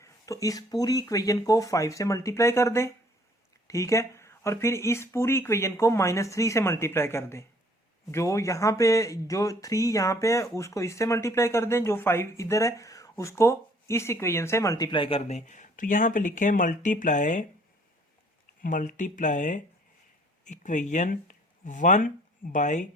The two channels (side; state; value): both; normal; correlation 0.59